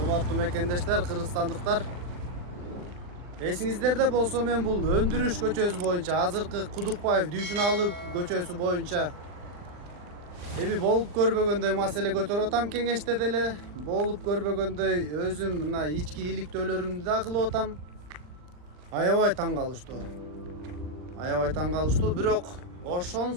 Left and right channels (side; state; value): left; late; 39 ms